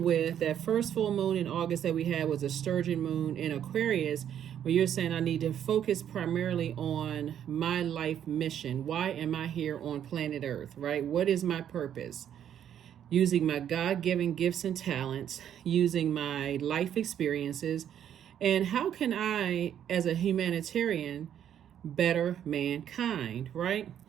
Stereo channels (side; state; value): left; quieter; 9.8 dB